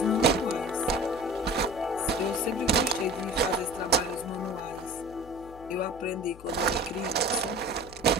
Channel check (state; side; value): noise; left; hum, 19 dB below the sound